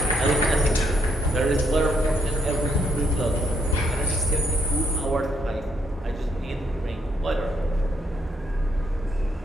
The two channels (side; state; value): both; normal; correlation 0.74